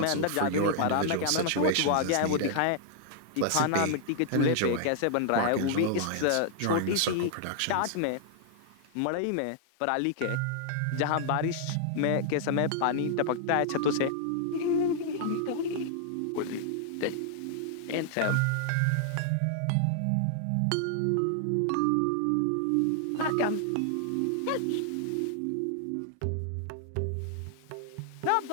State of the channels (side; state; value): both; different; correlation -0.01